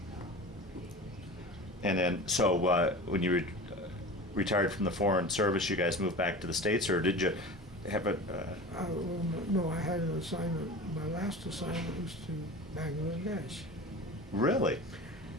And then, so when you retired from the Foreign Service, you guys moved back to the States, or did you have a... Well, no, I had an assignment. My last assignment was to Bangladesh. Really?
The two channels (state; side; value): noise; right; hum, 24 dB below the sound